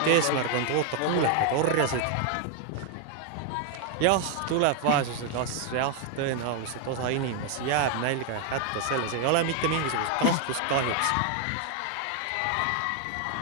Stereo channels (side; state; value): both; different; correlation 0.01